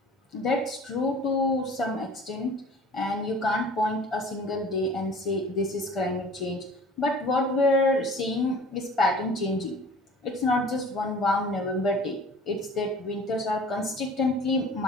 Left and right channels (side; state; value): both; normal; correlation 0.45